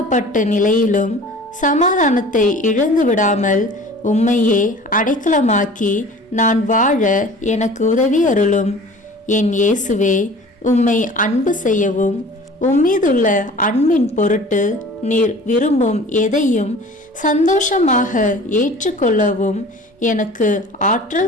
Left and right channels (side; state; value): both; normal; correlation 0.44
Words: நிலையிலும் சமாதானத்தை இழந்து விடாமல் உம்மையே அடைக்கலமாக்கி நான் வாழ எனக்கு உதவி அருளும். என் இயேசுவே, உம்மை அன்பு செய்யவும் உம்மீதுள்ள அன்பின் பொருட்டு நீர் விரும்பும் எதையும் சந்தோஷமாக ஏற்றுக்கொள்ளவும் எனக்கு